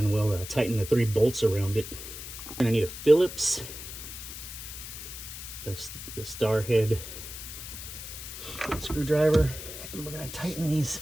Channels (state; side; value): noise; left; hiss, 10 dB below the sound